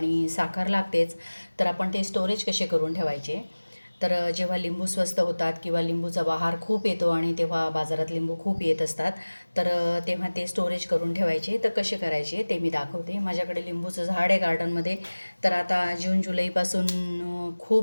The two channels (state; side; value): inverted; both; correlation -1.00